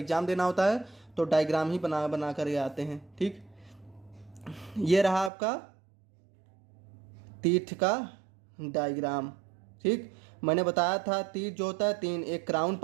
देना होता है तो डायग्राम ही बना बना कर आते हैं। ठीक, ये रहा आपका टीथ का डायग्राम। ठीक, मैंने बताया था टीथ जो होता है 3, एक क्राउन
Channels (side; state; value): left; drops out; at 5.3 s